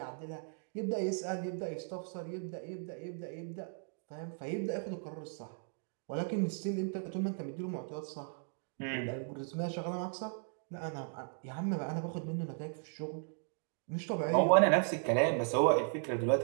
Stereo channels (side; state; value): left; silent; 53 dB below the other